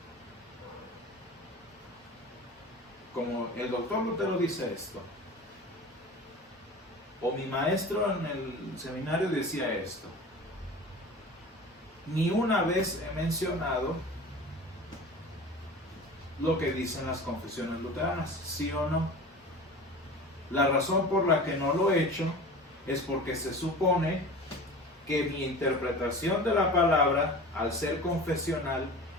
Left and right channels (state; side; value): normal; both; correlation 0.36